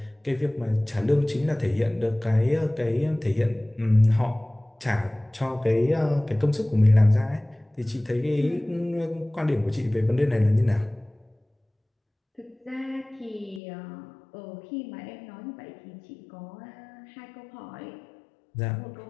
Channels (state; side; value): drops out; right; at 13.6 s